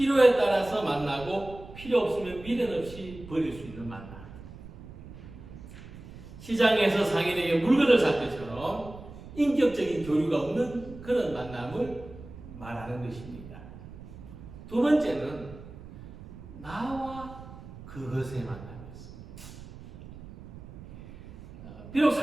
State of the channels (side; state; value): right; noise; rumble, 15 dB below the sound